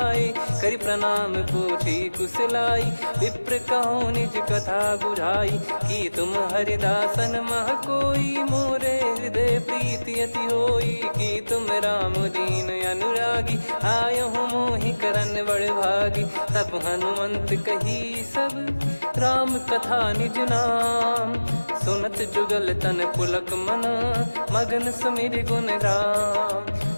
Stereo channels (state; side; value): inverted; both; correlation -1.00